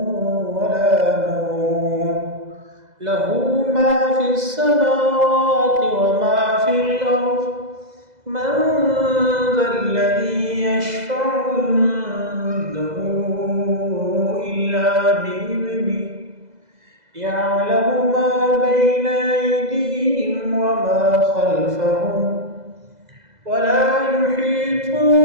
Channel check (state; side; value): late; left; 2.0 ms